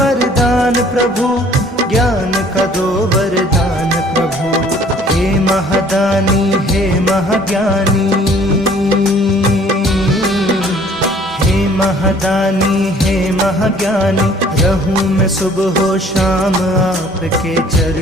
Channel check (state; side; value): normal; both; correlation 0.55